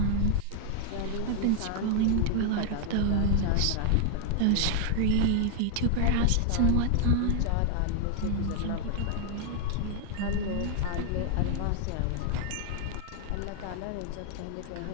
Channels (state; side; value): different; both; correlation 0.00